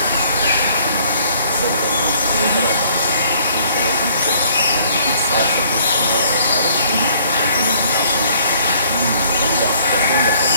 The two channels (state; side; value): inverted; both; correlation -0.61